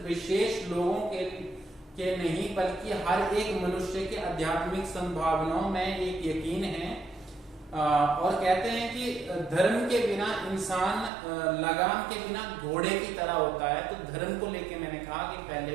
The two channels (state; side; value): drops out; left; at 11.1 s